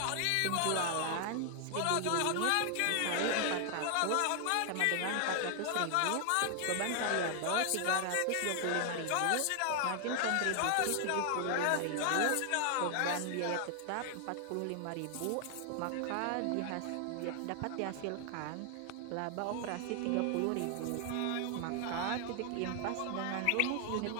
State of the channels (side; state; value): both; different; correlation 0.00